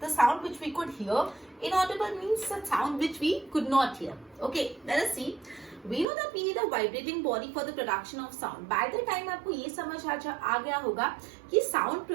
the sound which we could hear. Inaudible means the sound which we could not hear. Okay, let us see. We know that we need a vibrating body for the production of sound. By the time आपको ये समझ आ गया होगा कि sound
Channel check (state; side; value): drops out; left; at 6.1 s